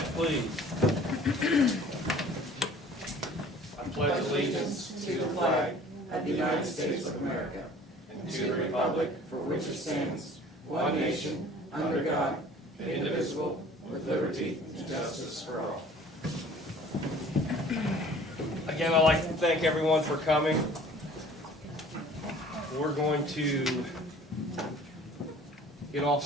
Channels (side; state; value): both; normal; correlation 0.49